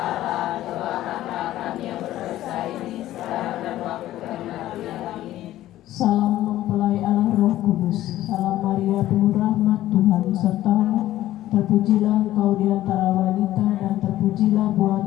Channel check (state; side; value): quieter; right; 14.3 dB